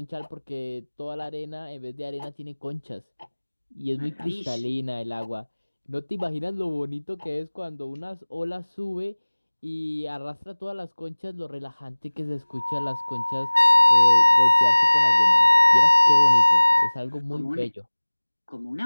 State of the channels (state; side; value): inverted; both; correlation -1.00